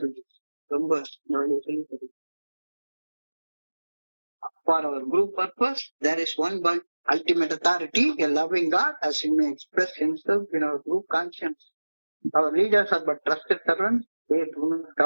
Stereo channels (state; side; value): inverted; both; correlation -1.00